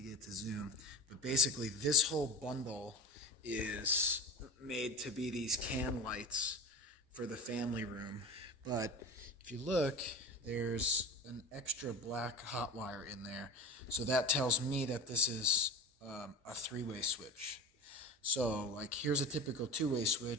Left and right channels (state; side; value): normal; both; correlation 0.31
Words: get to zoom, but basically, this whole bundle is made to be these can lights for the family room. But if you look, there's an extra black hot wire in there. So that tells me that this is a three-way switch. So, like, here's a typical two-way